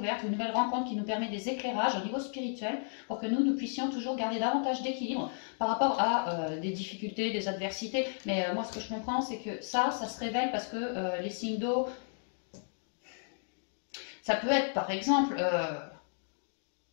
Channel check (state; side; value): silent; right; digital silence